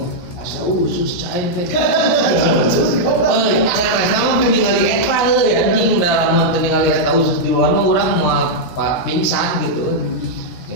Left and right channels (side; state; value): right; late; 17 ms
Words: asa usus cain teh euy saresna mah ningali eta euy anjing da lamun teu ningali eta usus di luar mah urang moal pingsan gitu